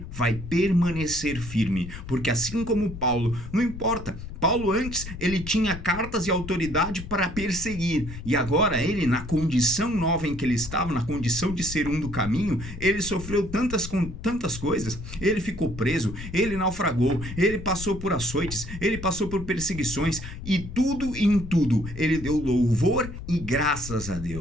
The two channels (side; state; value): left; noise; rumble, 10 dB below the sound